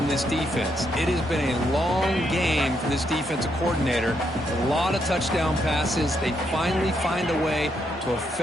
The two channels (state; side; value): normal; both; correlation 0.77